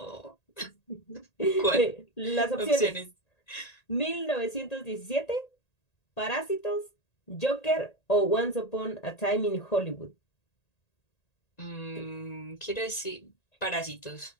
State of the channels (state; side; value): late; right; 1.8 ms